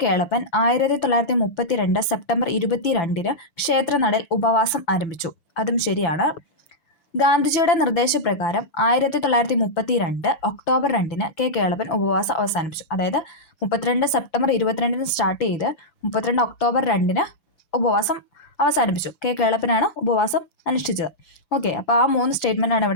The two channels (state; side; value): late; right; 6.9 ms